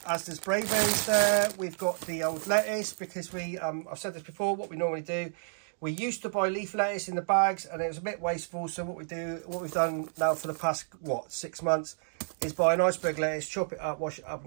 Asda's Brayberries there. We've got the old lettuce because I've said this before, what we normally do, we used to buy leaf lettuce in the bags and it was a bit wasteful. So what we've done now for the past, 6 months is buy an iceberg lettuce, chop it up, wash it up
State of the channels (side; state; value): left; silent; digital silence